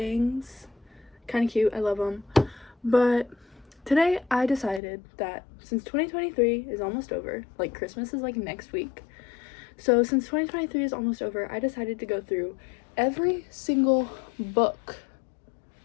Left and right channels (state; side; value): drops out; right; at 4.8 s